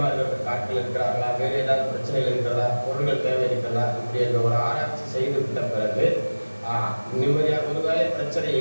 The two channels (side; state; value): both; inverted; correlation -1.00